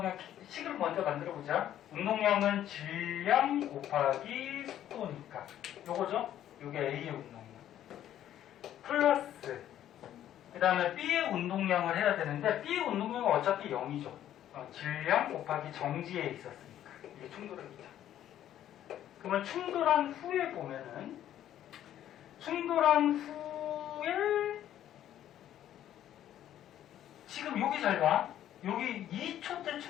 식을 먼저 만들어 보자. 운동량은 질량 곱하기 속도니까. 요거죠? 요게 A의 운동량. 플러스 그 다음에 B의 운동량을 해야 되는데 B의 운동량은 어차피 0이죠. 질량 곱하기 정지에 있었으니까 이게 충돌합니다. 그러면 충돌한 후에 보면은 충돌한 후에 지금 여기 잘 봐. 여기 2초 때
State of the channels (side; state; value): right; quieter; 11.5 dB